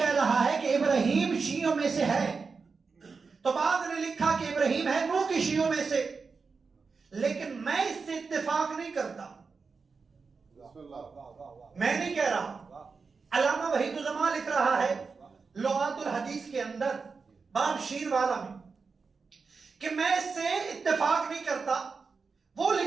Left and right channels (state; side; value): quieter; left; 4.8 dB